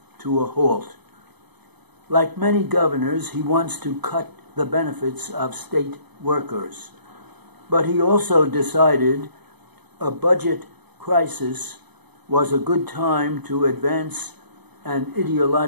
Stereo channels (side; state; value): left; late; 0.99 ms